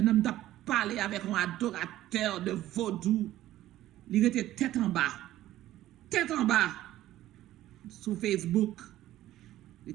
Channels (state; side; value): quieter; left; 14.3 dB